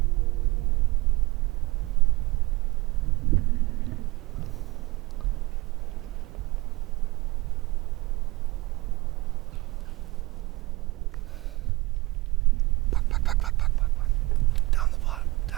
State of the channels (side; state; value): left; quieter; 21.8 dB